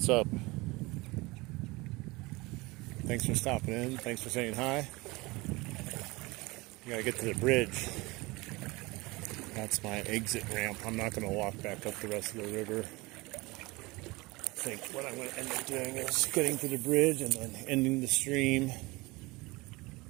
up? Thanks for stopping in. Thanks for saying hi. We gotta get to the bridge. That's my exit ramp. I'm not gonna walk back up the rest of the river. I think what I'm gonna end up doing is getting to the bridge and then ending the stream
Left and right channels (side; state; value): left; quieter; 23.0 dB